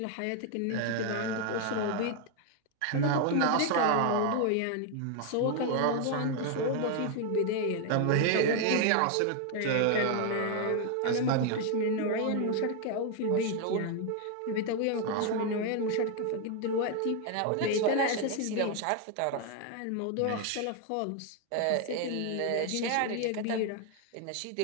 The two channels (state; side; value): different; both; correlation 0.01